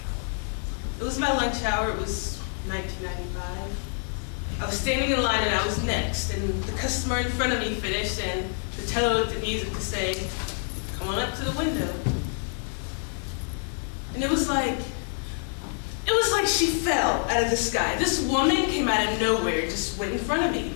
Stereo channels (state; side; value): silent; right; 55 dB below the other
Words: It was my lunch hour. It was 1995. I was standing in line and I was next, and the customer in front of me finished, and the teller looked at me as if to say, "Come on up to the window." And it was like she fell out of the sky. This woman came out of nowhere, just went in front of me.